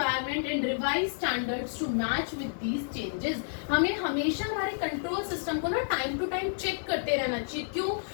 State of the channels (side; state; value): right; silent; digital silence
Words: and revise standards to match with these changes। हमें हमेशा हमारे कंट्रोल सिस्टम को ना टाइम टू टाइम चेक करते रहना चाहिए। क्यों?